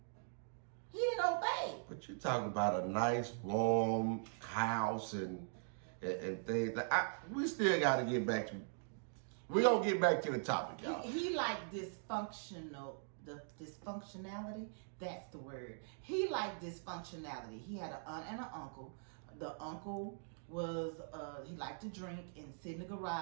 He didn't obey. But you're talking about a nice, warm house and things. We still got to get back to. We're gonna get back to the topic, y'all. He liked dysfunctionality. That's the word. He liked dysfunctionality. He had an aunt and an uncle. The uncle was he liked to drink and sit in the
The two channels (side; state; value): left; silent; digital silence